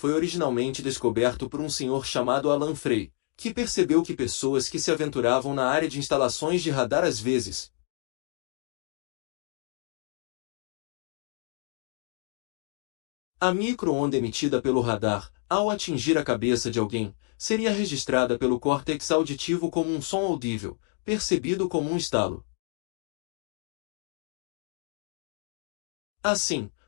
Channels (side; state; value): right; silent; 59 dB below the other